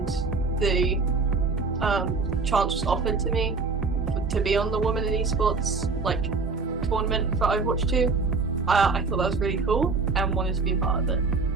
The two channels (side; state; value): left; quieter; 4.3 dB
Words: the chance was offered to me to be on the Women in Esports tournament for Overwatch 2, I thought that was really cool and wanted to be a part of it.